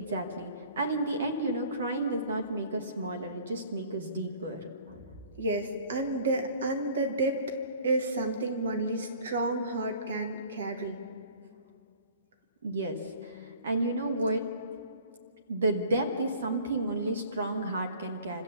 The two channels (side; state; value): both; inverted; correlation -0.49